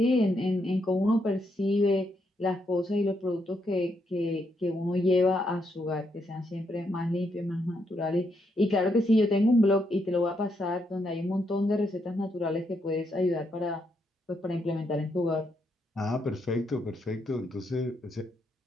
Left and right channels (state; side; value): normal; both; correlation 0.78